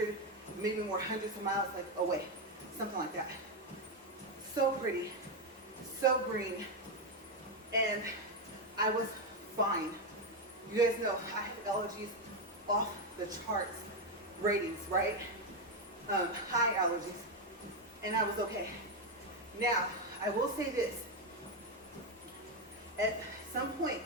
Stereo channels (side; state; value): both; normal; correlation 0.06